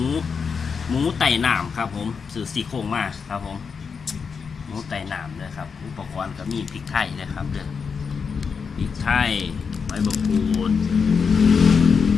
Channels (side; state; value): right; quieter; 5.8 dB